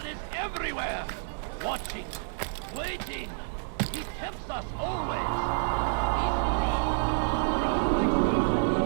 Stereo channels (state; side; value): silent; left; digital silence